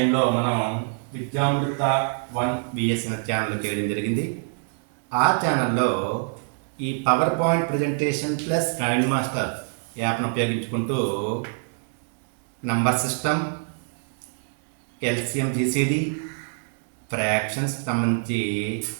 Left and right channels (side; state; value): left; silent; 62 dB below the other